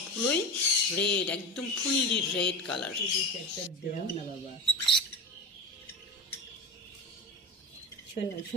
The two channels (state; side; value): normal; both; correlation 0.23